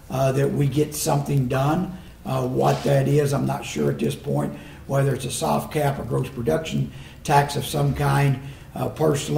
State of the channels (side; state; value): both; identical; correlation 1.00